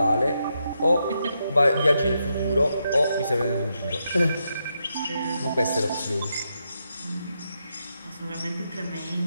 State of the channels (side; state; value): both; inverted; correlation -0.83